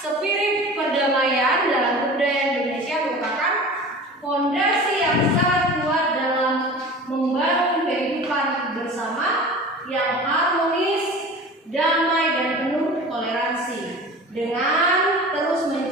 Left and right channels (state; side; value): normal; both; correlation 0.38